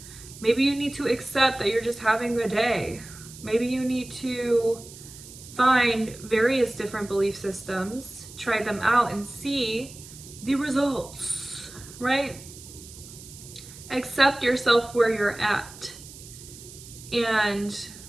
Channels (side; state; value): right; noise; hiss, 17 dB below the sound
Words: Maybe you need to accept that you're just having a day. Maybe you need to find various different belief systems, try them out, and see the results, right? Accept yourself where you're at and